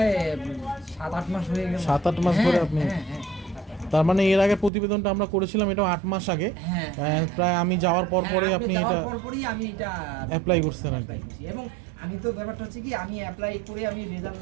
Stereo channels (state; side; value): drops out; left; at 4.7 s